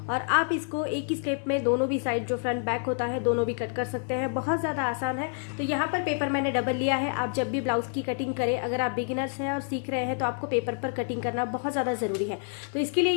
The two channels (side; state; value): right; silent; 59 dB below the other